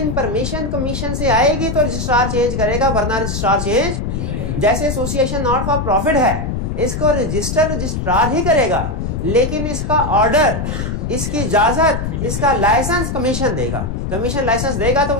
परमिशन कमीशन से आएगी तो रजिस्ट्रार चेंज करेगा, वरना रजिस्ट्रार चेंज। जैसे एसोसिएशन नॉट फॉर प्रॉफिट है, इसको रजिस्ट्रार ही करेगा, लेकिन इसका ऑर्डर, इसकी इजाजत, इसका लाइसेंस कमीशन देगा। कमीशन लाइसेंस देगा तो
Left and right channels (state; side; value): noise; left; rumble, 3 dB below the sound